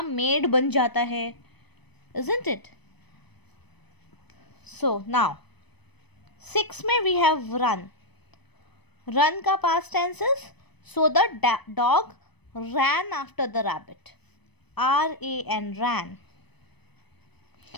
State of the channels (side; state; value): right; late; 0.99 ms